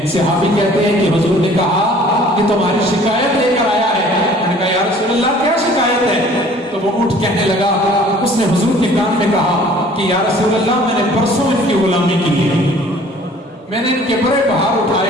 صحابی کہتے ہیں کہ حضور نے کہا کہ تمہاری شکایت لے کر آیا ہے. میں نے کہا یا رسول اللہ کیا شکایت ہے؟ تو وہ اٹھ کہنے لگا، اس نے حضور کے کان میں کہا کہ یا رسول اللہ میں نے پرسوں ان کی غلامی کی ہے، میں نے ان کے بڑے بہار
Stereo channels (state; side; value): normal; both; correlation 0.52